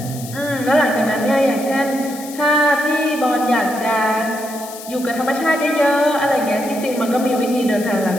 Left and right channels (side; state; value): left; noise; hiss, 14 dB below the sound